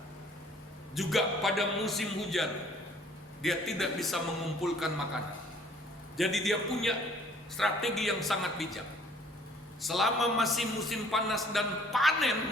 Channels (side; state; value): both; normal; correlation 0.57